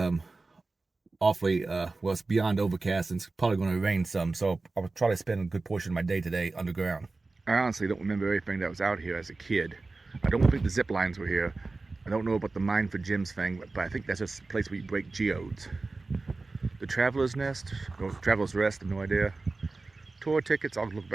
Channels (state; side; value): quieter; left; 3.5 dB